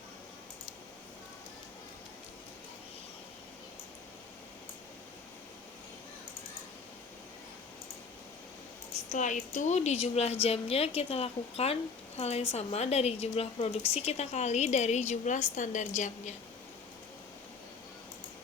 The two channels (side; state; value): right; quieter; 5.1 dB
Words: Setelah itu di jumlah jamnya kita lakukan hal yang sama, dari jumlah produksi kita kali dari jumlah standar jamnya.